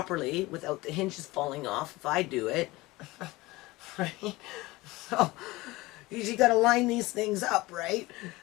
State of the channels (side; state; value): right; quieter; 20.5 dB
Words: without the hinges falling off if I do it, right? So you got to line these things up, right?